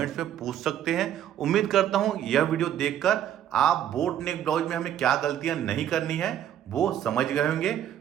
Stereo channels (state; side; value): quieter; left; 10.7 dB